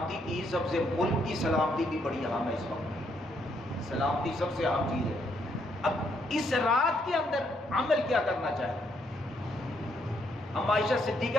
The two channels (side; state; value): both; normal; correlation 0.74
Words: کی سب سے، ملک کی سلامتی بھی بڑی اہم ہے. اس وقت سلامتی سب سے اہم چیز ہے. اب اس رات کے اندر عمل کیا کرنا چاہیے؟ ہم عائشہ